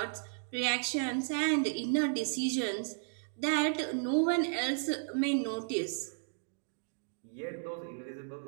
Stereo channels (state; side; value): silent; left; digital silence